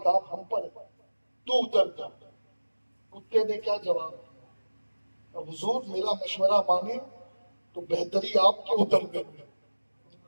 ہم پر ہے، تو اتر جا۔ کتے نے کیا جواب دیا؟ اب حضور میرا مشورہ مانے تو بہتری آپ کے اتر کر میں،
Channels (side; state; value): both; inverted; correlation -1.00